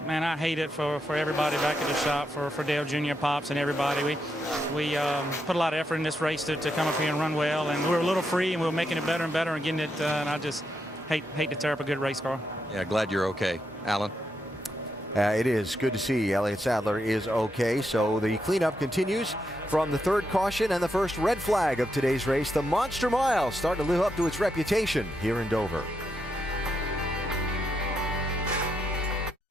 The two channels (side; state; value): both; normal; correlation 0.82